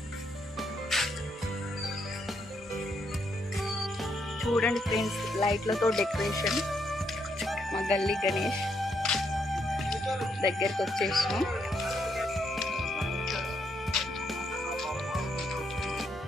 చూడండి ఫ్రెండ్స్. లైట్లతో డెకరేషన్. మా గల్లీ గణేష్ దగ్గరికి వచ్చేసాం.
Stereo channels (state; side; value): normal; both; correlation 0.76